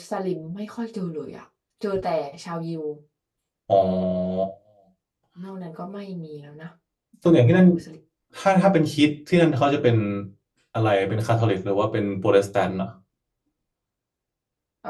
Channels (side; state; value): both; identical; correlation 1.00